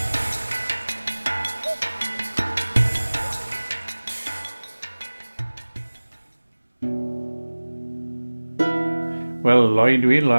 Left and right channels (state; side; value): inverted; both; correlation -1.00